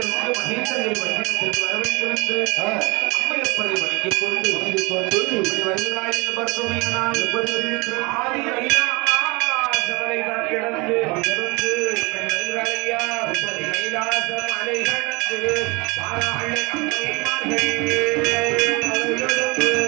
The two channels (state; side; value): quieter; left; 26.7 dB